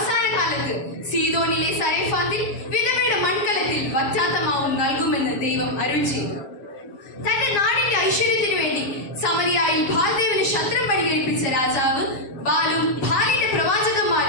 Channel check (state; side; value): late; right; 7.3 ms